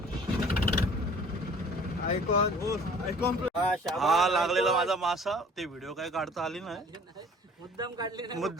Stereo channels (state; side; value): normal; both; correlation 0.51